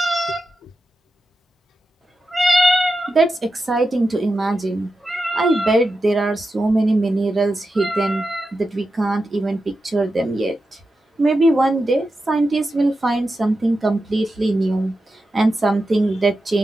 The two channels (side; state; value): both; normal; correlation 0.90